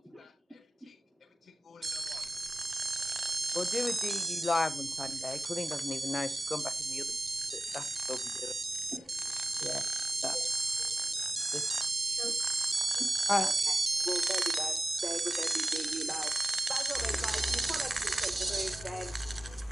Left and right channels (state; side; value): normal; both; correlation 0.96